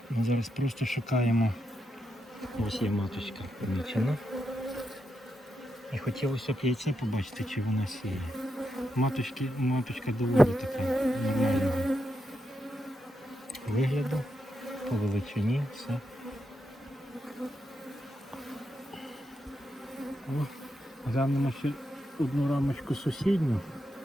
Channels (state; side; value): normal; both; correlation 0.84